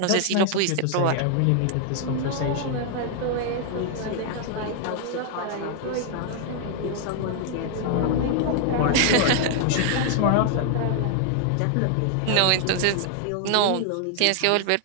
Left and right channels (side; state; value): both; different; correlation 0.00